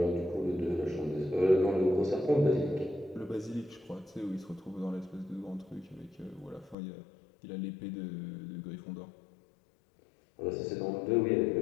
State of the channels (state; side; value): drops out; right; at 6.8 s